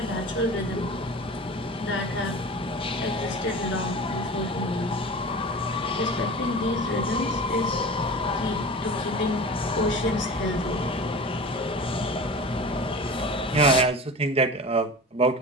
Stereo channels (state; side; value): normal; both; correlation 0.34